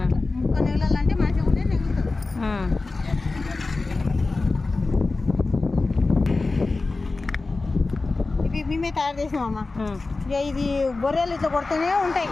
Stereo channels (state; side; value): quieter; right; 3.6 dB